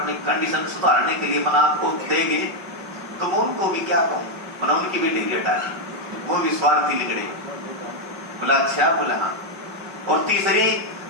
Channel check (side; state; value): left; late; 5.2 ms